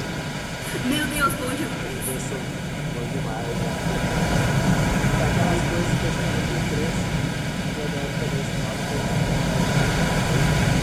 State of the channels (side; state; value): both; identical; correlation 1.00